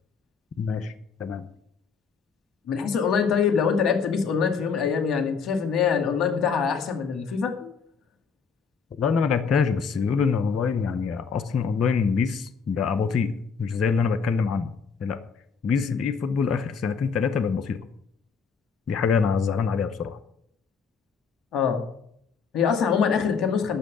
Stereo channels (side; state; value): right; quieter; 5.8 dB